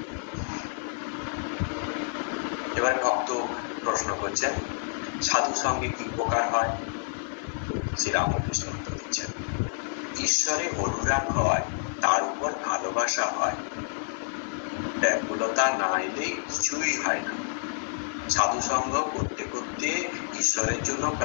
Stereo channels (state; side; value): silent; right; digital silence